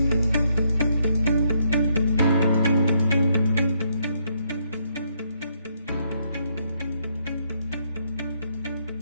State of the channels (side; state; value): both; inverted; correlation -0.74